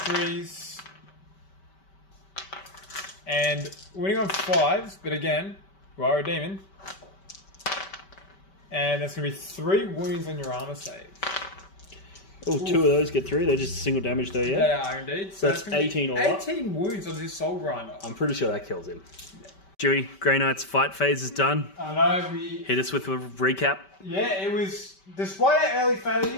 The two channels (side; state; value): right; late; 5.2 ms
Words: And winning on 5s, but again, you are a demon. And that's going to be 3 wounds on your armor save. Oh, 2 of those get through. They're just single damage though, yeah? They are indeed. So that's 18 all up. 18 wounds on this Soul Grinder. I'm pretty sure that kills him. Yeah. Dewey, Grey Knight's fight phase is done. I know, we... Hit us with a recap. Yeah, it was... Despite our early